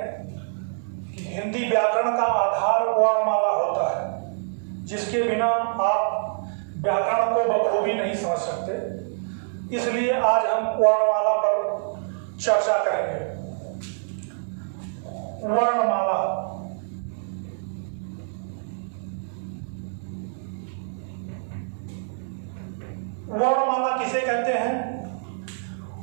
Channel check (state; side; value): silent; left; 61 dB below the other